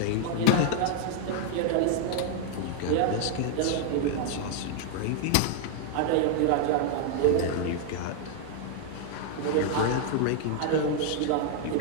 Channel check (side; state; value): both; different; correlation 0.00